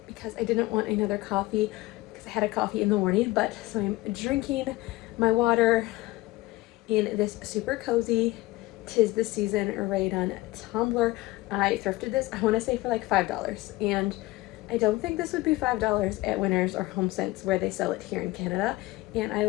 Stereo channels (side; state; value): right; quieter; 19.3 dB